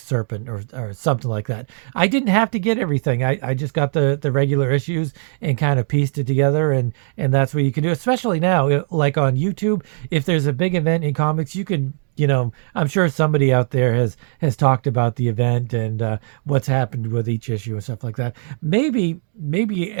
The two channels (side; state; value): left; silent; digital silence